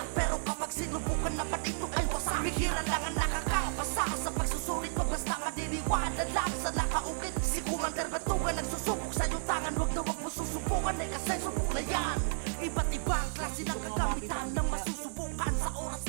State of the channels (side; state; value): left; silent; digital silence